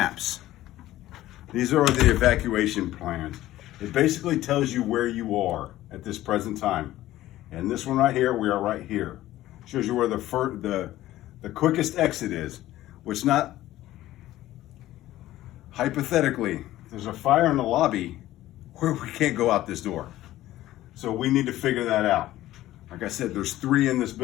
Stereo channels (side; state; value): right; quieter; 15.0 dB